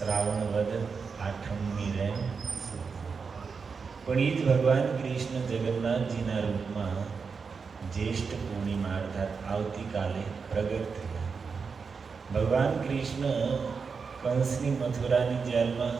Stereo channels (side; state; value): left; quieter; 5.3 dB